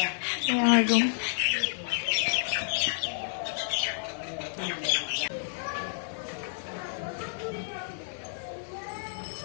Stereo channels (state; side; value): silent; right; digital silence